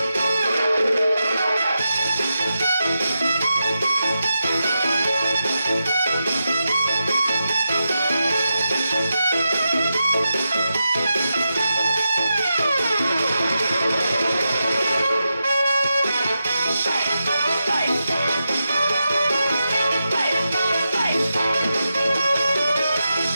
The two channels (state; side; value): inverted; both; correlation -0.89